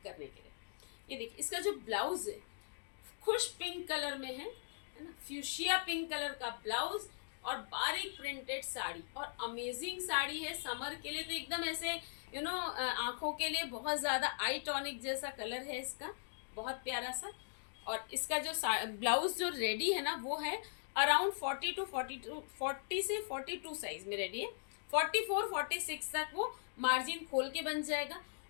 करने के लिए। ये देखिए, इसका जो ब्लाउज है खुश पिंक कलर में है ना, फ्यूशिया पिंक कलर का ब्लाउज और बारीक प्रिंटेड साड़ी। और अमेजिंग साड़ी है समर के लिए, तो एकदम ऐसे आंखों के लिए बहुत ज़्यादा आई टॉनिक जैसा कलर है इसका, बहुत प्यारा सा। और इसका जो ब्लाउज जो रेडी है ना, वो है अराउंड 40 से 42 साइज में रेडी है। 44-46 तक वो मार्जिन खोल के बन जाएगा।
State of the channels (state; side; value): silent; right; digital silence